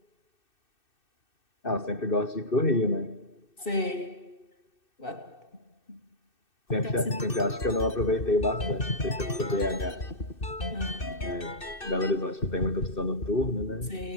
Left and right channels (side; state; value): right; late; 2.6 ms